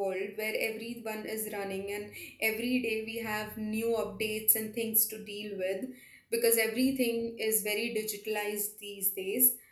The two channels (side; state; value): both; identical; correlation 1.00